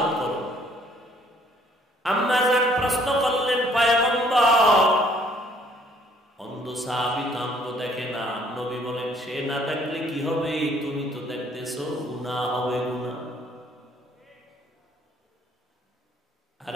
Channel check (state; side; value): normal; both; correlation 0.62